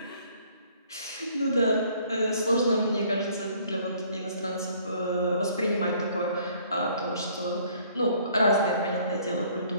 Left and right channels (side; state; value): both; inverted; correlation -0.59